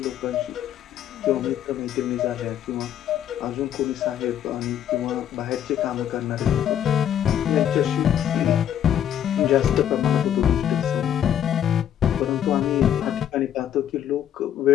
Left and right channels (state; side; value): quieter; right; 10.2 dB